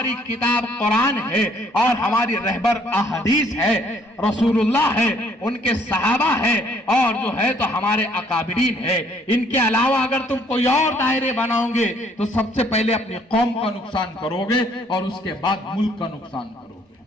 किताब कुरान है, और हमारी रहबर अहदीस है, रसूलुल्लाह है, उनके सहाबा है, और जो है तो हमारे अकाबिरीन है। इनके अलावा अगर तुम कोई और दायरे बनाओगे तो सबसे पहले अपनी कौम का नुकसान करोगे और उसके बाद मुल्क का नुकसान करोगे।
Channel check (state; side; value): normal; both; correlation 0.63